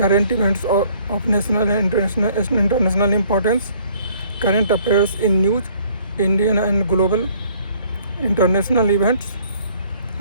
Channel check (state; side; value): inverted; both; correlation -0.60